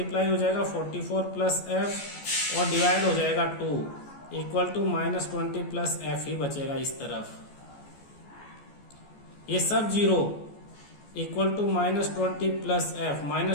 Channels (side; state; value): right; late; 14 ms